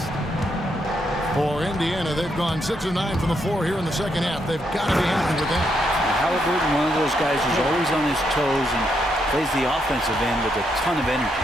For Indiana, they've gone 6 of 9 from the floor here in the second half. They've got to be happy with that. Halliburton, one of those guys who's always on his toes and plays the offensive end with a ton of energy.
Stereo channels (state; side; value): normal; both; correlation 0.78